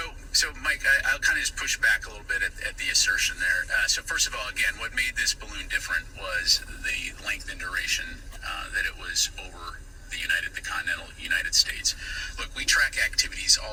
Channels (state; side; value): identical; both; correlation 1.00